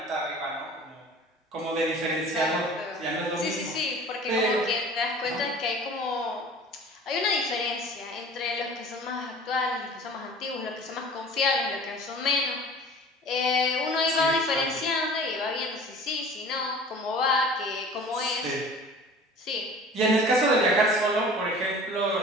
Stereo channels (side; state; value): both; normal; correlation 0.43